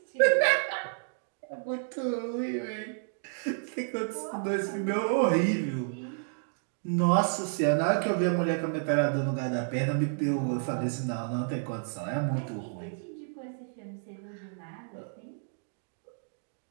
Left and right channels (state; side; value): silent; left; digital silence